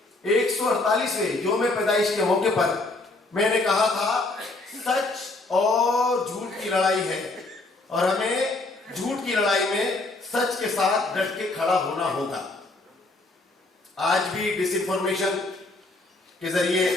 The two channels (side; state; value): right; quieter; 3.1 dB